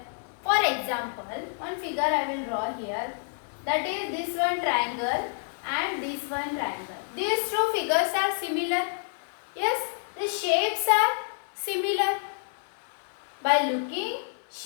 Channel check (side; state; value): right; silent; digital silence